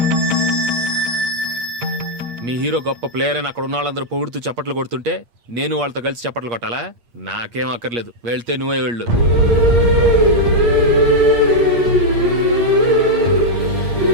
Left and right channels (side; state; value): left; late; 8.5 ms